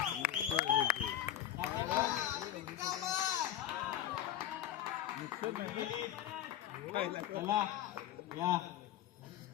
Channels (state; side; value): quieter; right; 11.7 dB